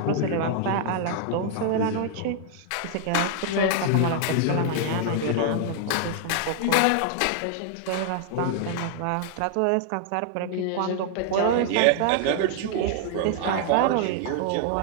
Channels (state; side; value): different; both; correlation 0.00